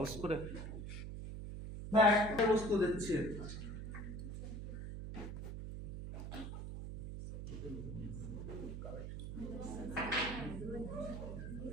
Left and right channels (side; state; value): right; noise; hum, 6 dB below the sound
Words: করে না, একটা বস্তু দিচ্ছি।